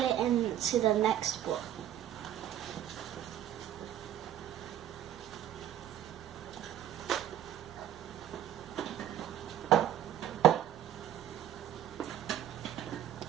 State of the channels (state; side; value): quieter; left; 11.2 dB